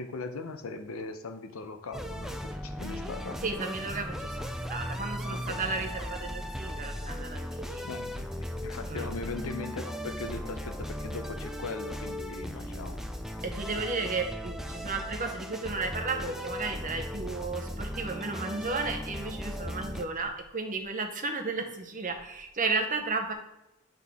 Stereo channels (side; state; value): both; normal; correlation 0.31